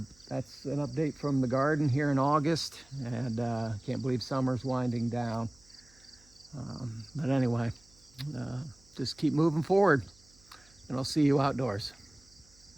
an update from the garden here in August, and can't believe summer's winding down. But anyway, just keep moving forward, and I'll see you outdoors.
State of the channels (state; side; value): noise; right; hum, 29 dB below the sound